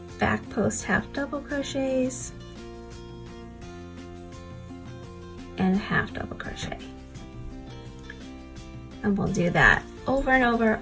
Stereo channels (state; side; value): identical; both; correlation 1.00